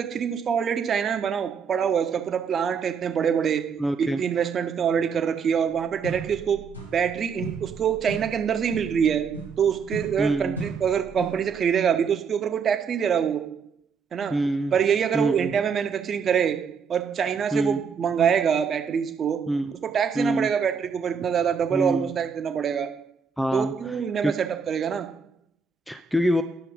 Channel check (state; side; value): quieter; left; 6.1 dB